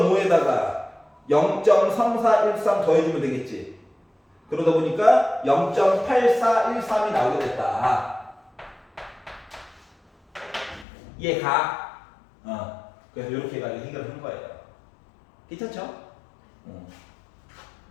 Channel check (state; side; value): drops out; right; at 10.9 s